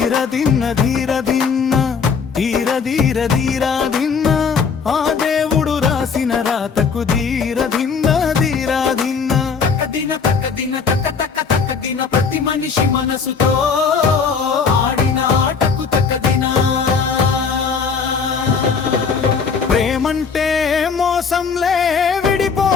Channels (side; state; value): right; quieter; 5.7 dB